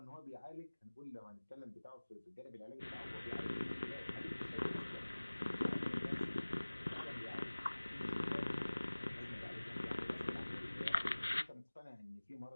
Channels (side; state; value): both; inverted; correlation -1.00